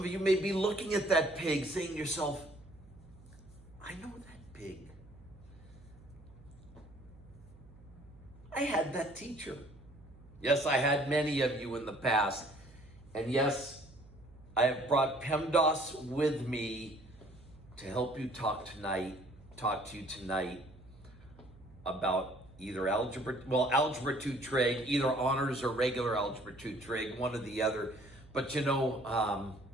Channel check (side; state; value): right; noise; hum, 22 dB below the sound